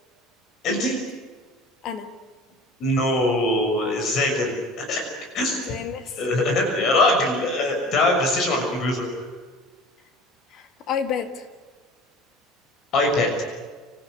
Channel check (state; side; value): normal; both; correlation 0.41